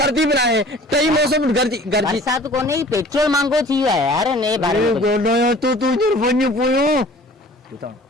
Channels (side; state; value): both; normal; correlation 0.48